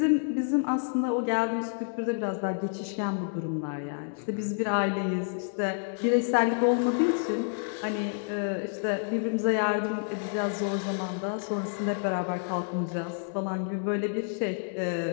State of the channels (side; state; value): right; silent; digital silence